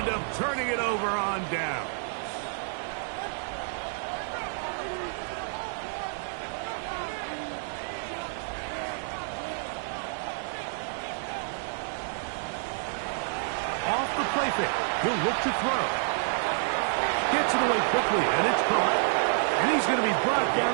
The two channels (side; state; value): left; silent; digital silence